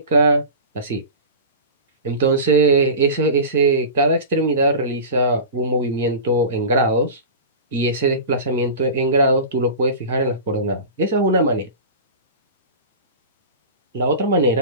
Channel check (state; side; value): inverted; both; correlation -0.32